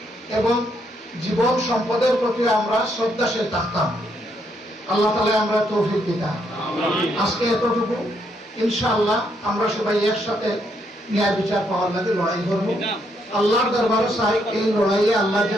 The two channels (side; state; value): both; normal; correlation 0.75